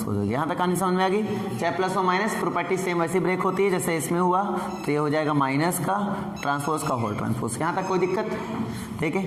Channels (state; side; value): identical; both; correlation 1.00